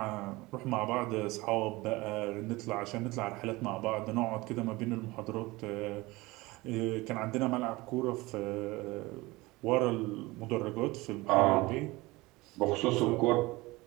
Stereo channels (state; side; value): quieter; left; 21.5 dB